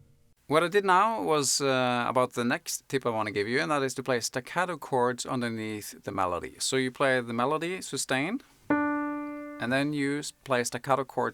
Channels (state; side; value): identical; both; correlation 1.00